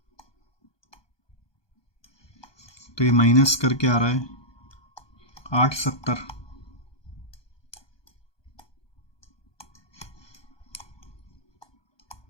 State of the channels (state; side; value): late; right; 1.2 ms